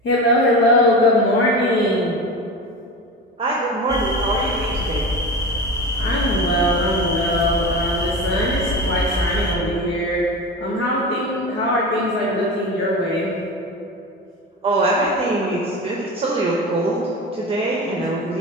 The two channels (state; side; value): normal; both; correlation 0.27